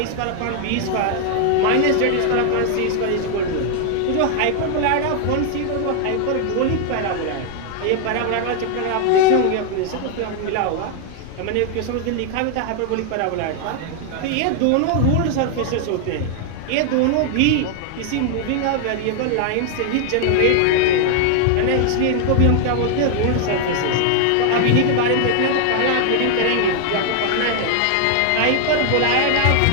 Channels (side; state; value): both; different; correlation 0.00